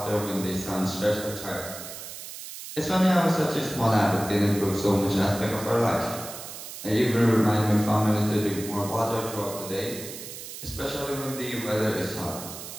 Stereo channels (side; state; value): right; noise; hiss, 11 dB below the sound